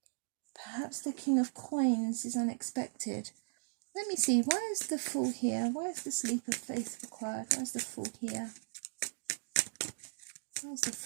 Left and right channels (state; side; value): silent; left; digital silence